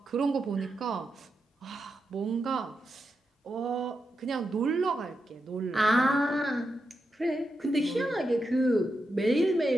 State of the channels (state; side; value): normal; both; correlation 0.86